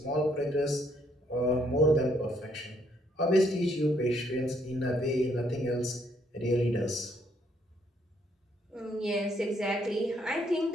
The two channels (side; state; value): both; normal; correlation 0.70